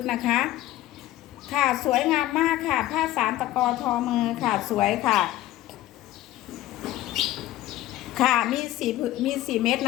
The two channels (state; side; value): quieter; right; 15.0 dB